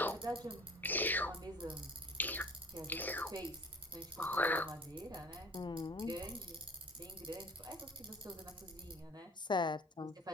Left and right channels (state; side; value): normal; both; correlation 0.46